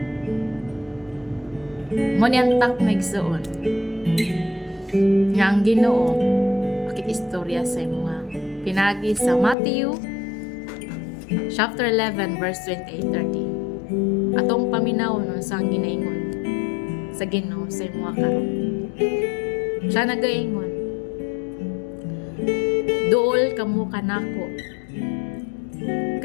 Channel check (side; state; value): right; drops out; at 9.6 s